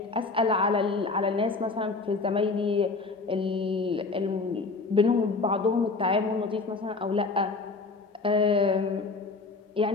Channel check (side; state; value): right; quieter; 3.9 dB